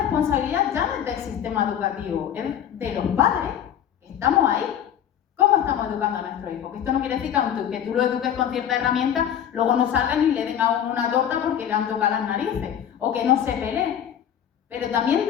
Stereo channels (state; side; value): quieter; right; 9.6 dB